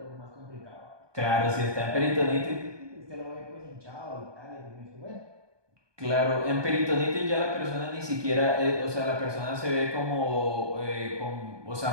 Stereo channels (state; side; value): late; left; 1.2 ms